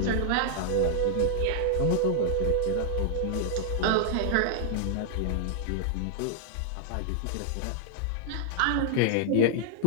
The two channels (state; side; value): different; both; correlation -0.01